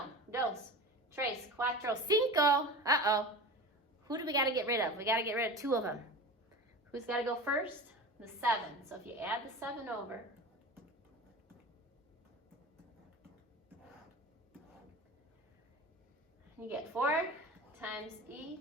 dos, tres, cuatro, cinco. Uh-oh. Who do we got to get rid of? We got to get rid of 2 of them. Who's got to go first? The 7. So if you add the 7 over, you get 4 times e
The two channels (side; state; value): both; normal; correlation 0.32